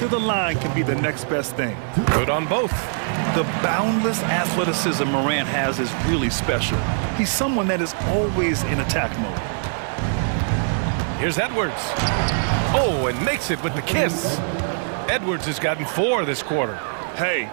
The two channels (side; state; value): left; silent; digital silence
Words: the line can be the next best thing. Good on both. The boundless athleticism Morant has is really special. He's someone that is always in attack mode. Here's Edwards. Oh, and makes it with the kiss. Edwards has gotten 4 this quarter. Hey,